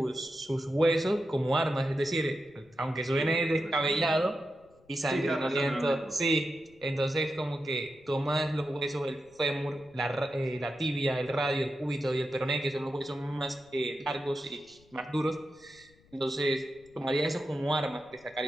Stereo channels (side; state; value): left; noise; rumble, 29 dB below the sound